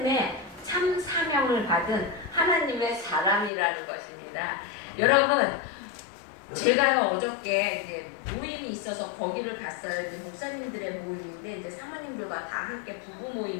참 사명을 받은 하나님의 사람이라는 것입니다. 여러분, 제가요 어저께 이제 모임이 있어서 거기를 갔어요. 이제 목사님들의 모임인데 이제 사모님들과 다 함께 부부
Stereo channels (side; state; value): right; drops out; at 3.5 s